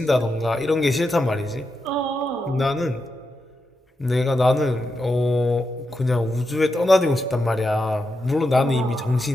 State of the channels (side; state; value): both; normal; correlation 0.86